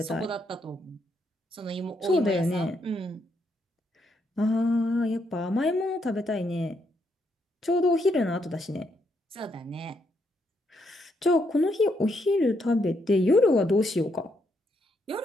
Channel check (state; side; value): normal; both; correlation 0.77